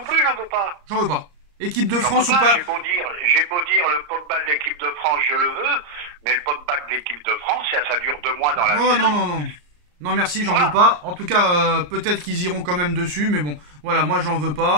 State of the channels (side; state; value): left; late; 34 ms